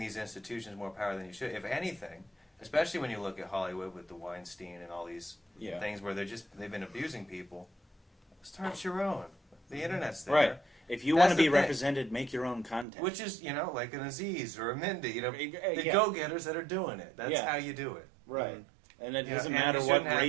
institutions more power than you should. If anything, especially when you look at Hollywood with the Weinstein and all these things where they've been abusing people, start your own. The internet's there. Right. If you want to be represented, make your own content. Which is, like an Aziz or a Mindy, the go-getters that are doing it. That's how you do it. Right. Mm-hmm. And it doesn't matter what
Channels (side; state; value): left; drops out; at 12.9 s